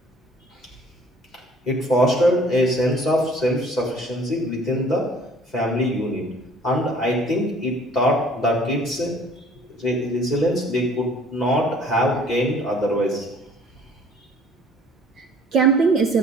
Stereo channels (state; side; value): normal; both; correlation 0.54